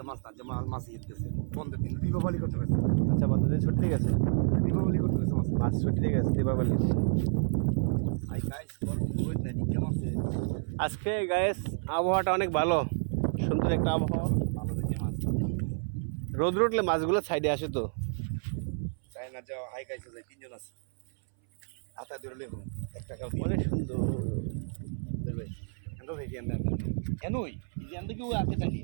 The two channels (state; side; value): silent; left; 58 dB below the other